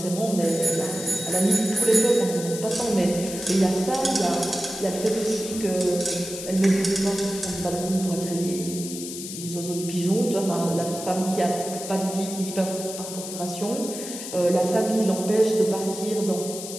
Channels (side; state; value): left; noise; hiss, 9 dB below the sound